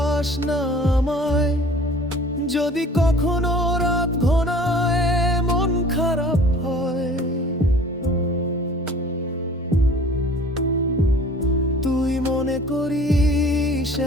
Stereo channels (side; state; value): both; normal; correlation 0.48